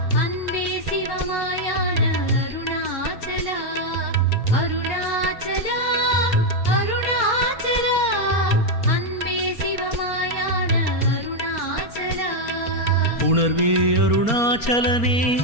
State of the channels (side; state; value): right; late; 4.3 ms